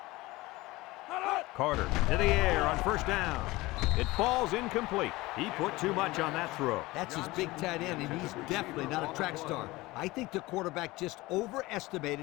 Carter to the air on first down. It falls incomplete. He put too much on that throw. That's his big tight end, and he's definitely not a track star. I think the quarterback just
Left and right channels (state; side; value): quieter; right; 20.3 dB